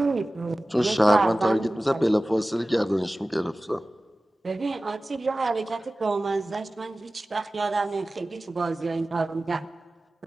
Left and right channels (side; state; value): both; normal; correlation 0.97